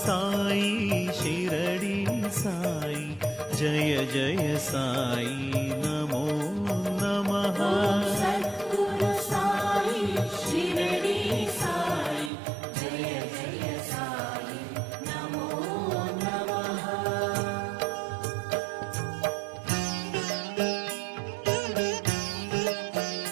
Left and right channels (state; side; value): drops out; left; at 12.3 s